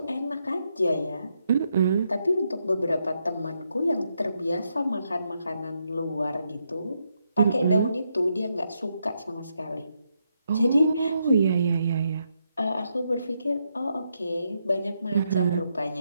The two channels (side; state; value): both; inverted; correlation -0.80